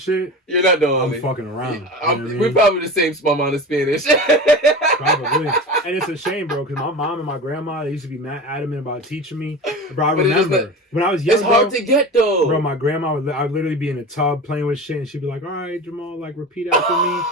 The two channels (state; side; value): normal; both; correlation 0.31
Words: you're not the only. I'm fucking around. You know what I mean? We're probably the same small amount of Spanish. Probably. And it's a shame, bro, because my mom and my grandma, they used to be mad adamant about teaching me. Bro, I remember when I was young. It's hard to get, though. Bro, my grandma I'd literally be in a tub playing with shit, and she'd be like, all right, Jamal, like, repeat after me.